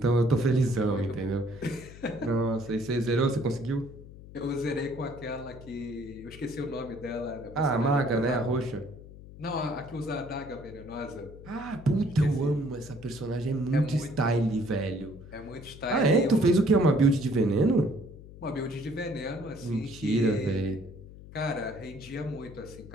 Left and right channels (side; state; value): left; noise; hum, 17 dB below the sound